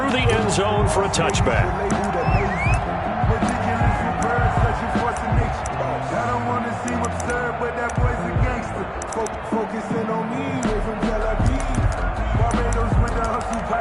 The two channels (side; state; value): both; identical; correlation 1.00